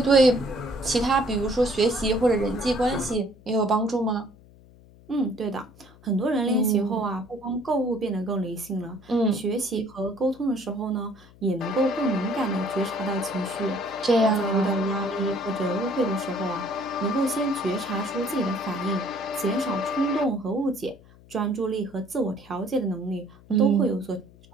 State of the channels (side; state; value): left; noise; hum, 24 dB below the sound